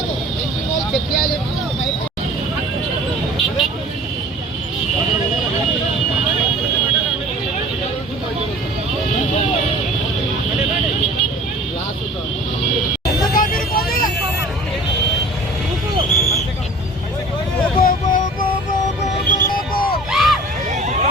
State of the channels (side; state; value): both; normal; correlation 0.44